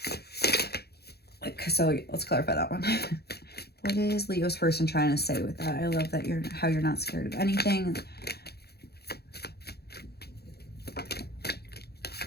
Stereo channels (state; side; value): late; right; 0.47 ms